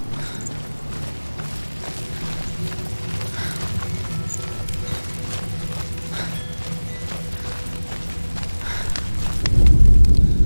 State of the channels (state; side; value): inverted; both; correlation -1.00